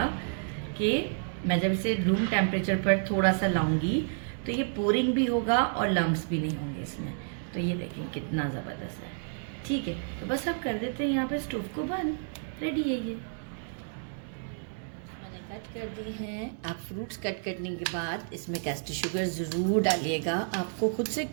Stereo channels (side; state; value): left; silent; 58 dB below the other